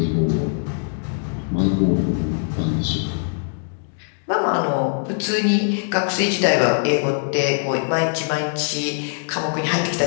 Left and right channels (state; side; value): silent; right; digital silence